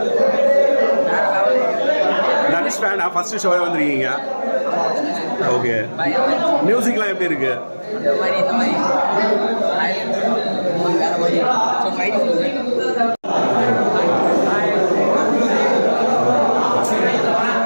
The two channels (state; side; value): inverted; both; correlation -1.00